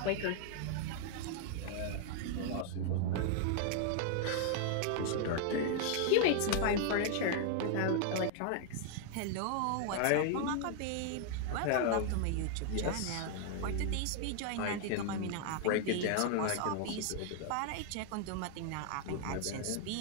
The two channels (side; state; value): both; different; correlation 0.00